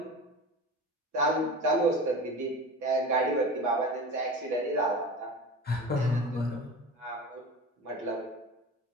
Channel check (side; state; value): both; normal; correlation 0.32